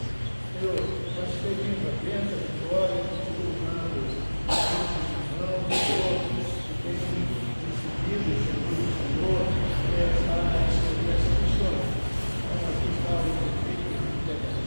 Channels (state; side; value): inverted; both; correlation -1.00